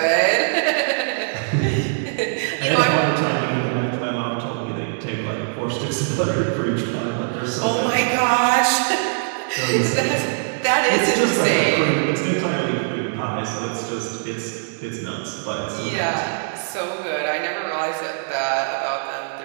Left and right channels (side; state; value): left; silent; digital silence